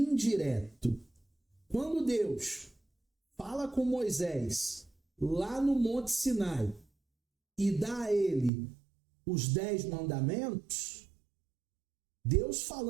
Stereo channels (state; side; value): drops out; left; at 8.5 s